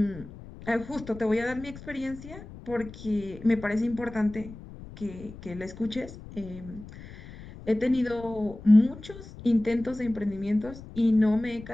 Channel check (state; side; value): noise; left; rumble, 15 dB below the sound